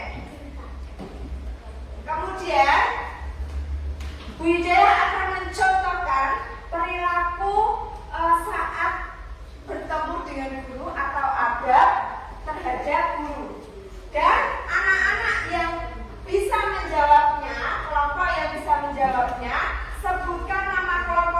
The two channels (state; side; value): identical; both; correlation 1.00